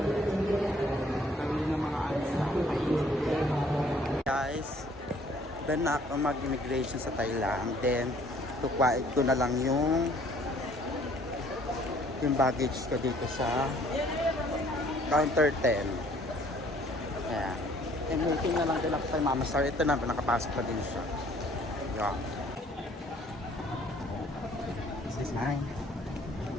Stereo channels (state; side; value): normal; both; correlation 0.58